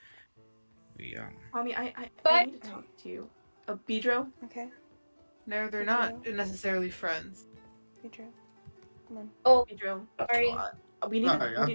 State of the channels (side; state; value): both; inverted; correlation -1.00